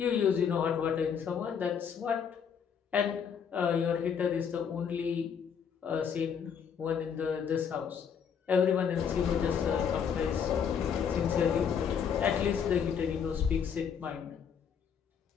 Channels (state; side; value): quieter; right; 7.3 dB